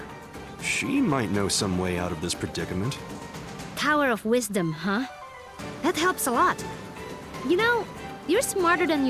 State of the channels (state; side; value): identical; both; correlation 1.00